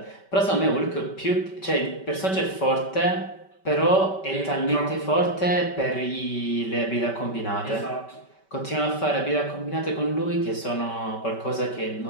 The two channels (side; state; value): right; late; 5.2 ms